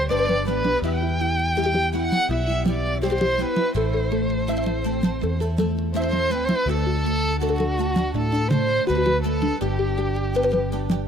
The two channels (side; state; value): both; normal; correlation 0.69